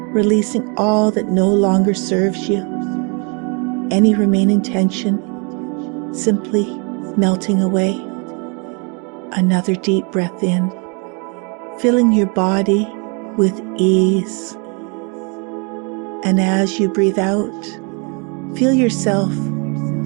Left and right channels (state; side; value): quieter; left; 33.8 dB